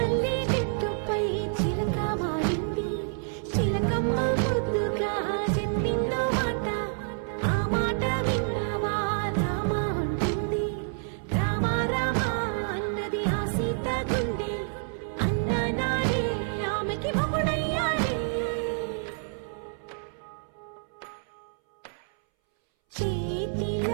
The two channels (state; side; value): silent; left; 59 dB below the other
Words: చెట్టుపై చిలక వాలింది చిలకమ్మ ముద్దుగా చెప్పిందో మాట ఆ మాట విన్నవా రామ అంటుంది రామ రామ అన్నది ఆ సీత గుండె అన్న నాడే ఆమెకి మొగుడయ్యాడే